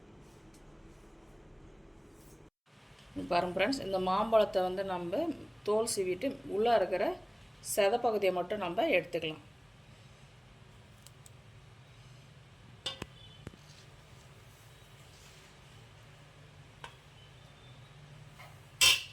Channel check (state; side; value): identical; both; correlation 1.00